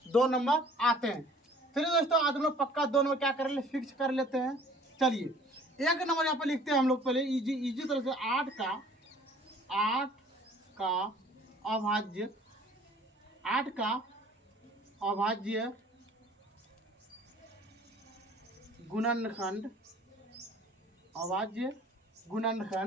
2 नंबर आते हैं। चलिए दोस्तों, आज हम लोग पक्का 2 नंबर क्या कर ले फिक्स कर लेते हैं। चलिए, एक नंबर यहाँ पे लिखते हैं हम लोग पहले इजी इजी तरह से। 8 का अभाज्य, 8 का अभाज्य गुणनखंड, अभाज्य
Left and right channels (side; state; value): both; normal; correlation 0.52